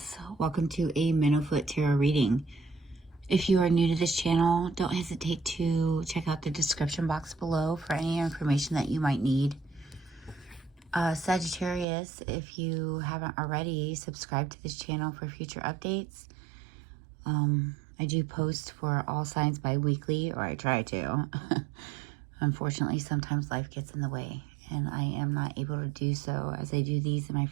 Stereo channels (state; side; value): drops out; left; at 11.9 s